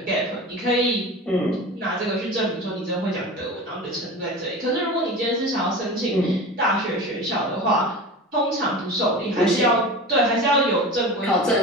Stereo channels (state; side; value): normal; both; correlation 0.32